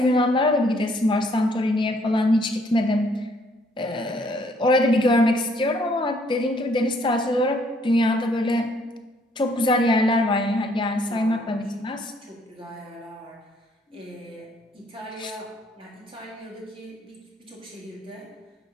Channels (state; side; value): normal; both; correlation 0.65